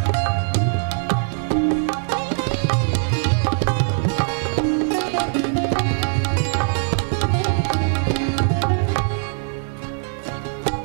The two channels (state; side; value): silent; left; 65 dB below the other